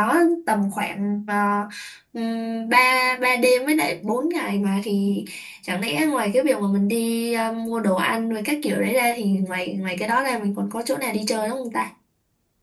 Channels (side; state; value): both; identical; correlation 1.00